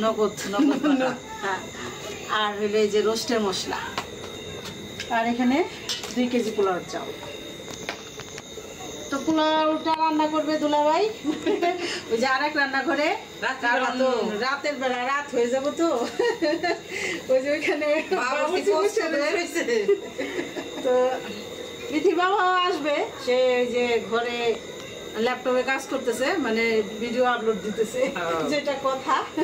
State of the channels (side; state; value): both; identical; correlation 1.00